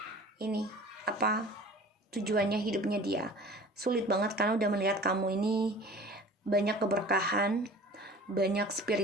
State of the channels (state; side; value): normal; both; correlation 0.44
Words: ini tujuannya hidupnya dia. Sulit banget karena udah melihat kamu ini banyak keberkahan, banyak